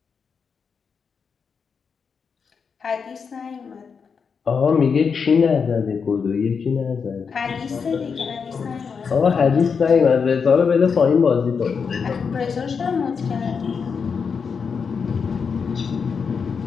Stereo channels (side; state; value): right; quieter; 5.9 dB